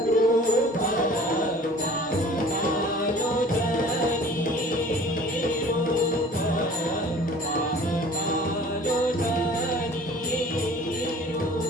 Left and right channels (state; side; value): normal; both; correlation 0.47